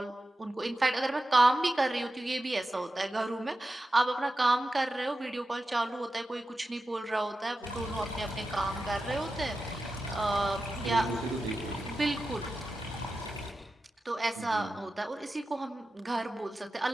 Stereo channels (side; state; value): both; normal; correlation 0.92